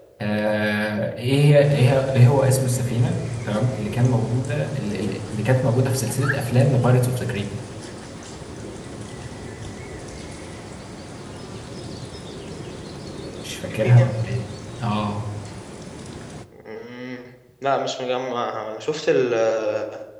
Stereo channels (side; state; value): both; identical; correlation 1.00